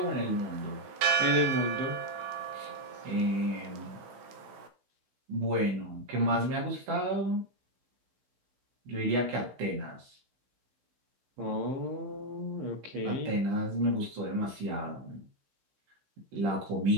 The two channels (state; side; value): late; left; 16 ms